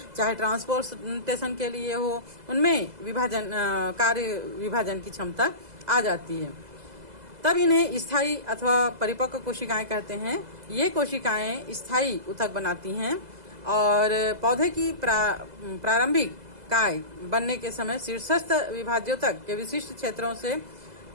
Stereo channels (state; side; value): late; left; 2.0 ms